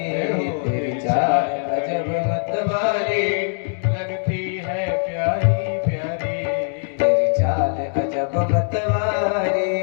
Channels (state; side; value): silent; right; digital silence